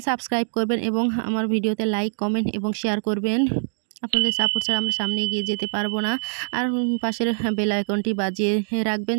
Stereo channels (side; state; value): left; silent; digital silence